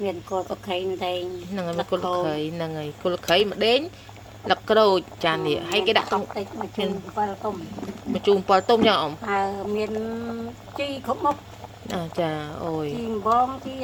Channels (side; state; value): both; identical; correlation 1.00